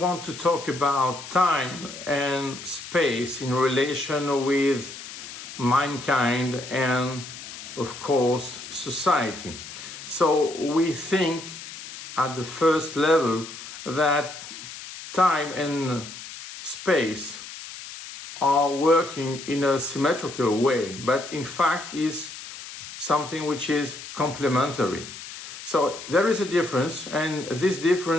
to talk about time and space in relation with mankind and, of course, society. So we think at the first level that time and space are working in a symmetrical way, but in fact is something which is complementary. So there is a difference, and this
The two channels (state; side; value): noise; left; hiss, 12 dB below the sound